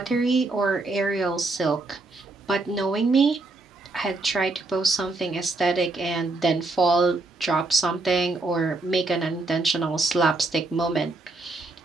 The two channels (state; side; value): quieter; left; 3.3 dB